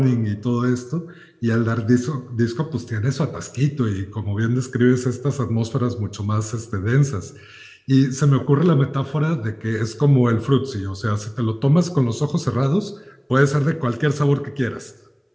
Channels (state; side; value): identical; both; correlation 1.00